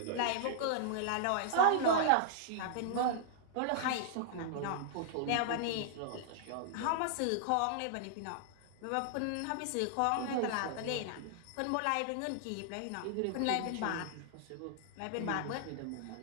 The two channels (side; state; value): both; different; correlation -0.01